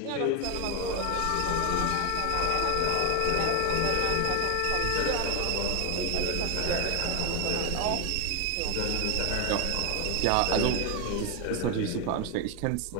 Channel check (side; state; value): both; different; correlation 0.01